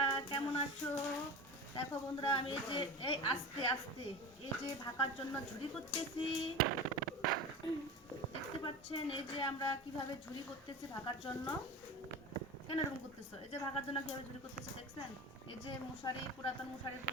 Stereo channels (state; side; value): normal; both; correlation 0.30